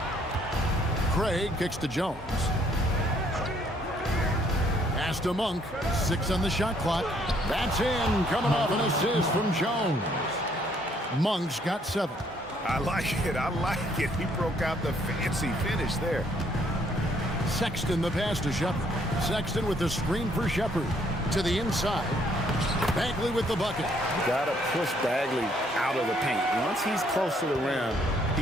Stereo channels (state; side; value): normal; both; correlation 0.66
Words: Craig kicks to Jones. Pass to Monk. 6 on the shot clock. That's in. Coming off an assist from Jones. Monk's got 7. I like it. I like it. He broke out the fancy finish there. Sexton the pass to Shepard. Sexton with the screen for Shepard. To the inside. Bagley with the bucket. Got to push Bagley out of the paint. Once he's close to the rim,